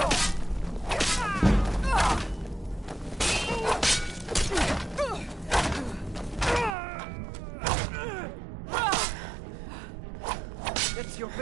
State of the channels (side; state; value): left; drops out; at 6.8 s